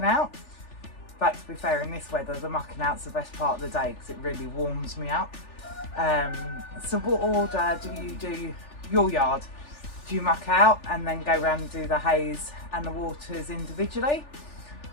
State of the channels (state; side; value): late; right; 3.4 ms